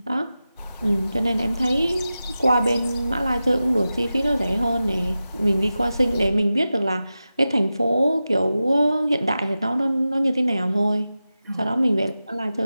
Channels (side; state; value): both; inverted; correlation -0.94